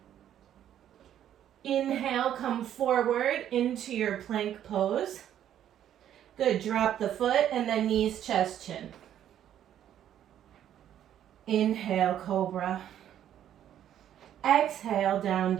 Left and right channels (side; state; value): left; quieter; 10.7 dB